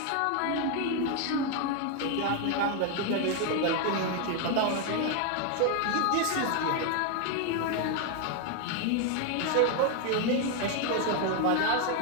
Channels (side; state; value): both; different; correlation 0.01